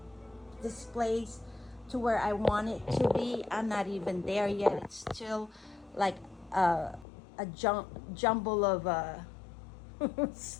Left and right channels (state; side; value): drops out; right; at 7.1 s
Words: place to where I want it to be. I'm not even there yet. It's still like a jumble of